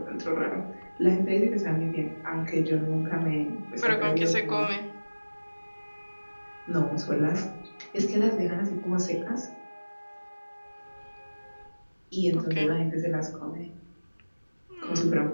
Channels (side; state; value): both; inverted; correlation -1.00